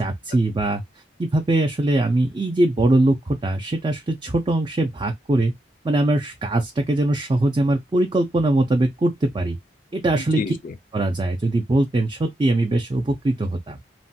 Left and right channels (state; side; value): normal; both; correlation 0.84